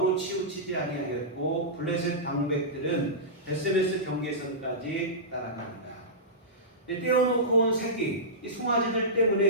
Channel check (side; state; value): both; normal; correlation -0.16